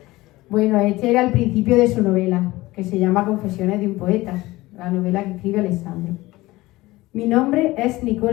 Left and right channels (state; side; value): quieter; right; 19.2 dB